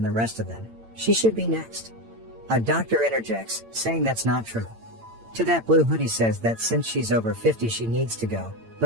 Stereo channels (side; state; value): left; late; 8.8 ms